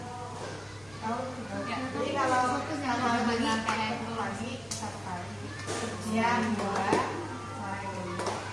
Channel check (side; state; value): right; noise; rumble, 24 dB below the sound